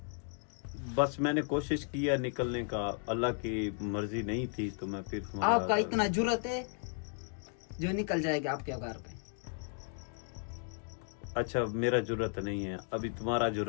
बस मैंने कोशिश किया निकलने का, अल्लाह की मर्जी नहीं थी तो मैं फिर आपका इतना जुर्रत है जो निकल जाएगा आपके घर पे। अच्छा मेरा जुर्रत नहीं है, अभी तुम्हारा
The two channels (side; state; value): right; silent; 55 dB below the other